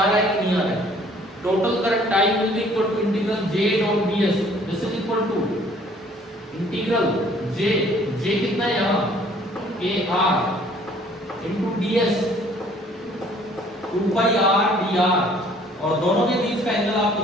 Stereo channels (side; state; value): both; normal; correlation 0.57